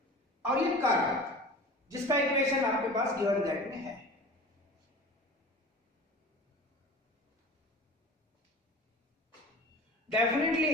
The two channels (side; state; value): both; normal; correlation 0.37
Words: और ये कर्व जिसका इक्वेशन आपके पास गिवन दैट में है।